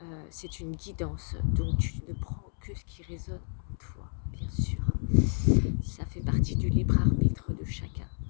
C'est une guidance, donc tu ne prends que ce qui résonne en toi, bien sûr. Ça fait partie du libre arbitre de chacun.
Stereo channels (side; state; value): right; silent; 58 dB below the other